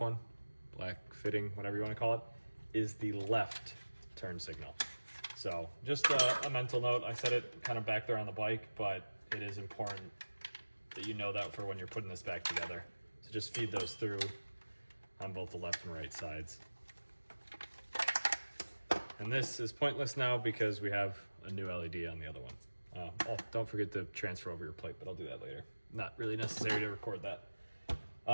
black fitting, whatever you want to call it, is the left turn signal. So just a mental note. I said it kind of back there on the bike, but it is important that you know that for when you're putting this back together. So just feed those through on both the left and right sides. And this is pointless now because we have a new LED on the other one. Oh, don't forget to transfer over your plate, but I'll do that later. Not really necessary to record that.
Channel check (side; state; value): both; inverted; correlation -1.00